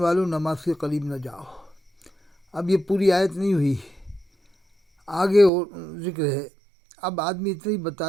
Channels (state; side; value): drops out; left; at 5.5 s